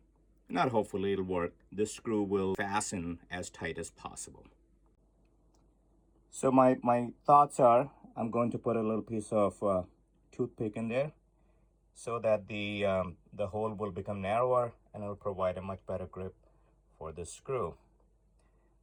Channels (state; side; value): identical; both; correlation 1.00